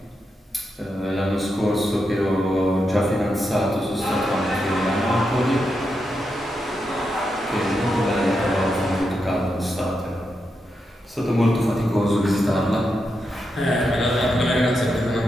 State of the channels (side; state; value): both; normal; correlation 0.85